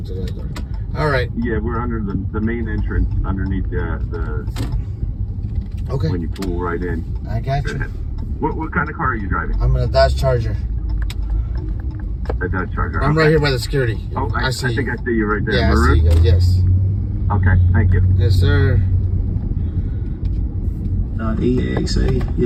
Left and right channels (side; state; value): both; identical; correlation 1.00